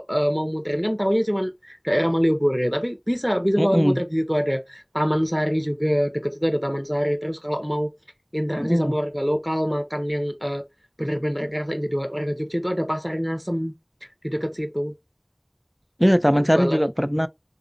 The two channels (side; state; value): both; identical; correlation 1.00